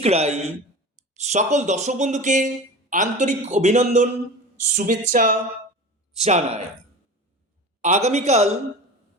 রায়। সকল দর্শক বন্ধুকে আন্তরিক অভিনন্দন, শুভেচ্ছা জানাই। আগামীকাল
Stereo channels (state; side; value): normal; both; correlation 0.33